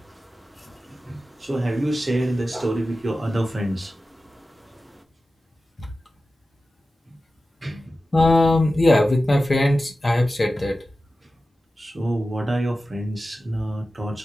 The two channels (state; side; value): normal; both; correlation 0.94